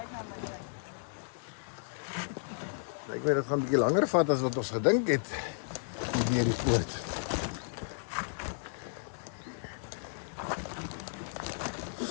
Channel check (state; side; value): silent; right; digital silence